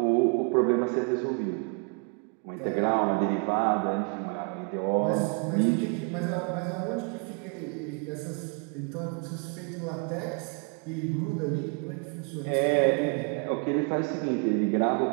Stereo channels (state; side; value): quieter; left; 35.8 dB